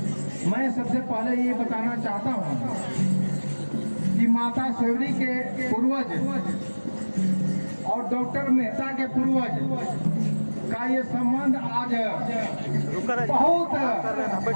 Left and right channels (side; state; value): both; inverted; correlation -1.00